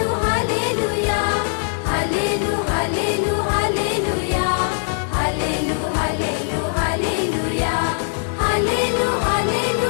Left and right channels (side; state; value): right; silent; digital silence